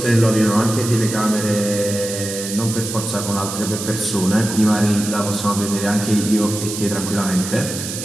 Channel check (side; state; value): right; noise; hiss, 7 dB below the sound